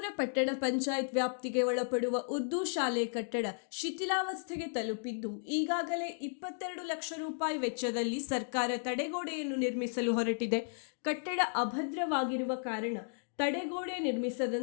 ಪಟ್ಟಣ ಪಂಚಾಯತ್ ವ್ಯಾಪ್ತಿಗೆ ಒಳಪಡುವ ಉರ್ದು ಶಾಲೆ ಕಟ್ಟಡ ಶಿಥಿಲಾವಸ್ಥೆಗೆ ತಲುಪಿದ್ದು ಈಗಾಗಲೇ 22 ಲಕ್ಷ ರೂಪಾಯಿ ವೆಚ್ಚದಲ್ಲಿ ಸರ್ಕಾರ ತಡೆಗೋಡೆಯನ್ನು ನಿರ್ಮಿಸಲು ಹೊರಟಿದೆ. ಕಟ್ಟಡ ಅಭದ್ರವಾಗಿರುವ ಕಾರಣ ತಡೆಗೋಡೆ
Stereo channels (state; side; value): silent; right; digital silence